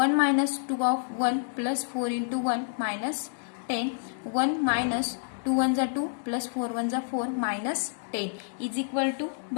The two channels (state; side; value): silent; right; digital silence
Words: minus 2 of 1 plus 4 into 1 minus 10. 1 minus 2 1 जा 2 प्लस 4 1 जा 4 मायनस 10 इज इक्वल टू